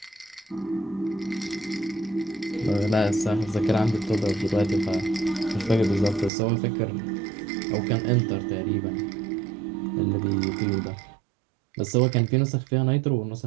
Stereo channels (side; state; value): left; drops out; at 6.3 s